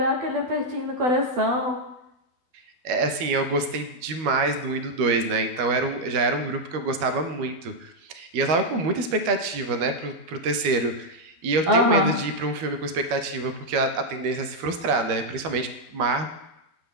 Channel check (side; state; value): left; late; 12 ms